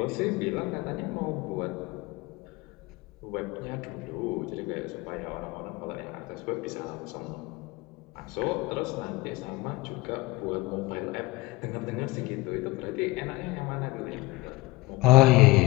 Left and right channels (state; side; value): quieter; right; 21.1 dB